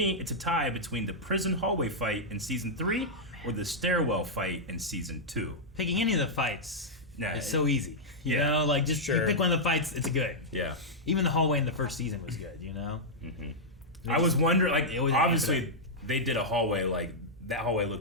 it's a tie between the prison hallway fight in season 3 or the stairwell fight in season 2. Picking any of the fights is so easy. You Yeah. know, like just you Sure. pick one of the fights, it's good. Yeah. Even the hallway in the first season was good, you know? Mm-hmm. I was wondering, like, They always obviously they did a hallway, like, that hallway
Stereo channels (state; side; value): normal; both; correlation -0.07